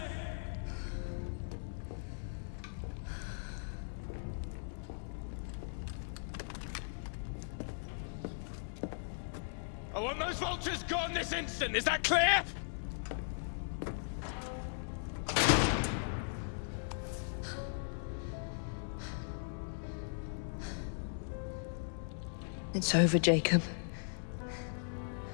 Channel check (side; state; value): right; silent; digital silence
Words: I want those vultures gone this instant, is that clear? It's over, Jacob.